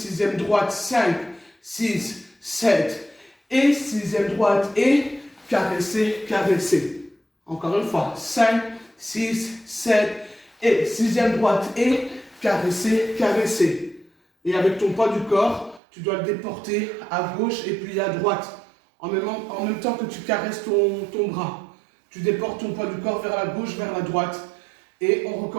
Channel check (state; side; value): drops out; left; at 15.8 s